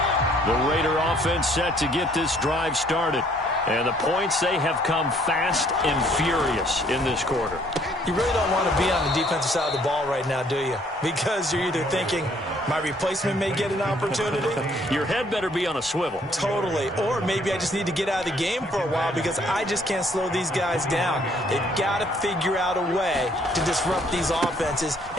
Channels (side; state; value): both; normal; correlation 0.63